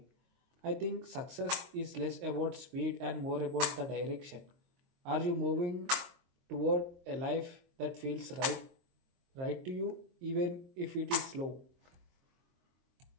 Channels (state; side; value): late; left; 22 ms